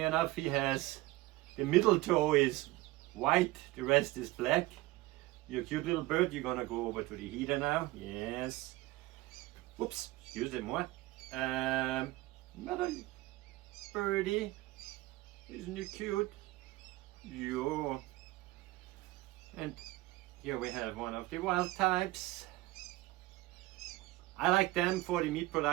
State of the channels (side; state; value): left; quieter; 19.2 dB